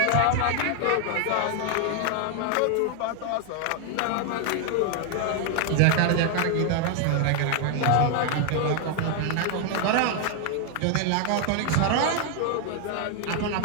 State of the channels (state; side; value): different; both; correlation 0.00